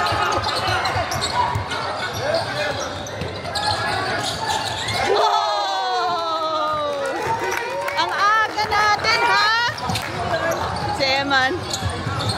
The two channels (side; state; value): both; identical; correlation 1.00